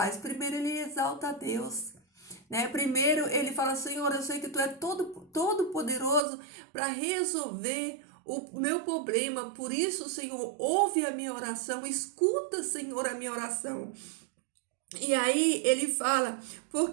Primeiro, ele exalta a Deus. Né? Primeiro, ele fala: Senhor, eu sei que tu é todo poderoso para resolver o meu problema. Por isso, Senhor, ouve a minha oração, escuta, Senhor, a minha oração. E aí ele fala:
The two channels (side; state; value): left; drops out; at 6.2 s